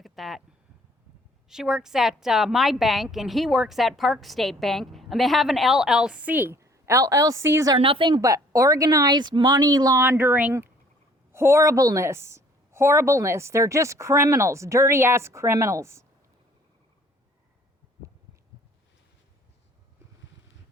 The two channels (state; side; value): normal; both; correlation 0.57